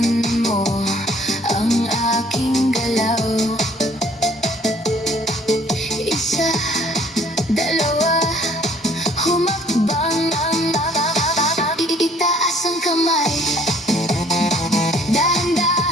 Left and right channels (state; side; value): normal; both; correlation 0.57